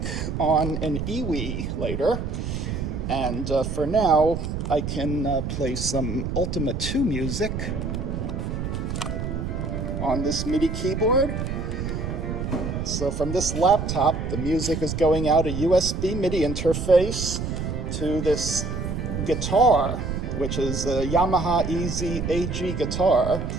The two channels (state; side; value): noise; right; rumble, 3 dB below the sound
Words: on an iwi later, and for now I can play some Ultima 2 music on this MIDI keyboard. So from this laptop, the music is going out a USB MIDI interface to this guitar, which is a Yamaha Easy AG guitar,